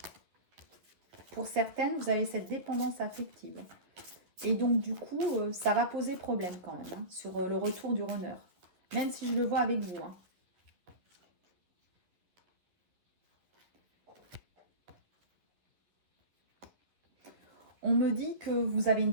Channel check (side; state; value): left; late; 11 ms